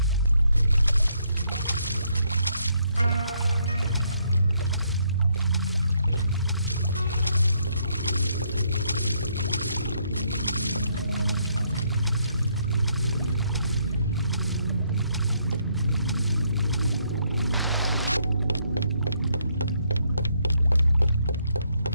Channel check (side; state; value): both; inverted; correlation -0.73